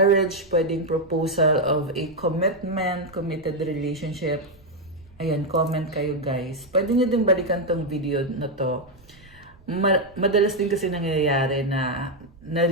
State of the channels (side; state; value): right; noise; rumble, 26 dB below the sound